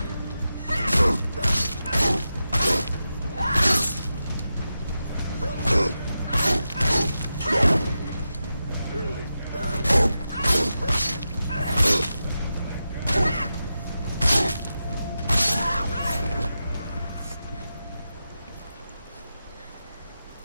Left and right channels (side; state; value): both; inverted; correlation -0.90